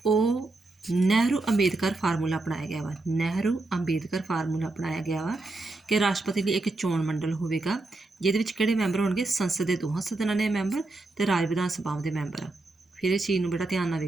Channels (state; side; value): quieter; left; 3.0 dB